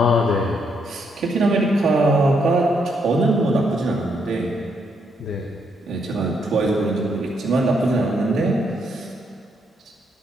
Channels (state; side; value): normal; both; correlation 0.76